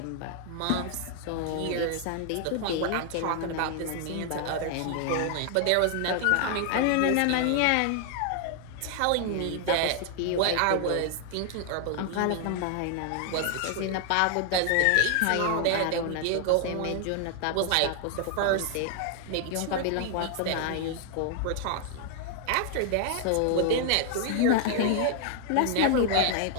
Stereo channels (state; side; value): different; both; correlation 0.00